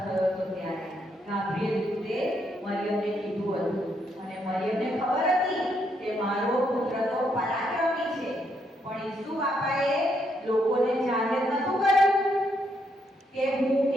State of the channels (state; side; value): normal; both; correlation 0.76